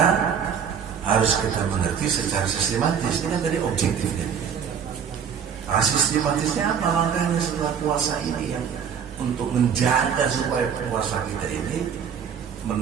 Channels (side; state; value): left; quieter; 7.5 dB